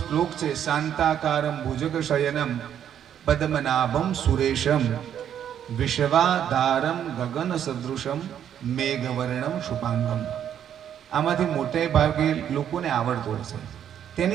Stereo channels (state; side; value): quieter; left; 9.5 dB